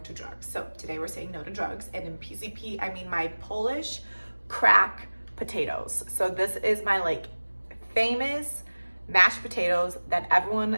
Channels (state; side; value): inverted; both; correlation -1.00